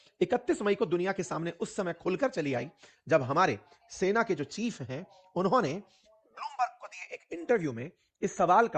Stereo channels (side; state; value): both; identical; correlation 1.00